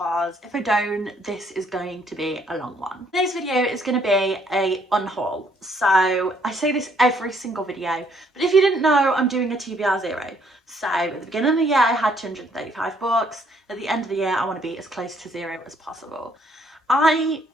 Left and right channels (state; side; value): normal; both; correlation 0.67